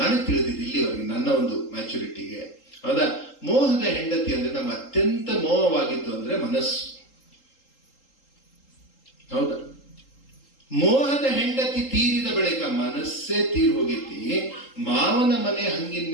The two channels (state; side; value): late; right; 3.8 ms